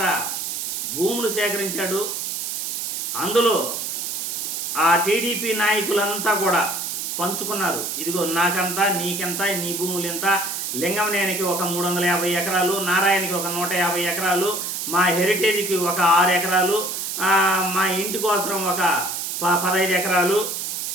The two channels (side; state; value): right; noise; hiss, 3 dB below the sound